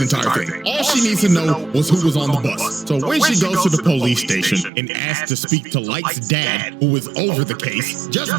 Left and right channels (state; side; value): drops out; left; at 4.7 s